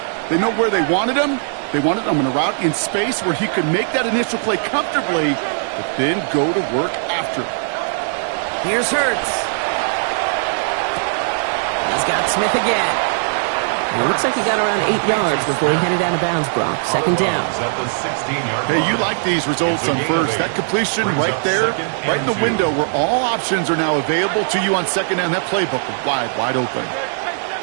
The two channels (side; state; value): left; silent; digital silence